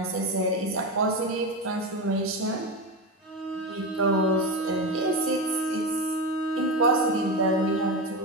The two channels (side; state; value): both; normal; correlation 0.18